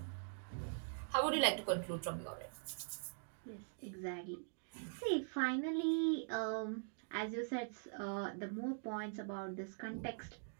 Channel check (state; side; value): silent; left; digital silence